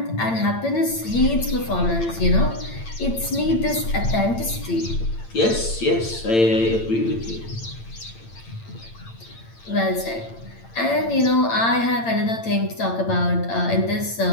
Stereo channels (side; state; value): right; late; 8.8 ms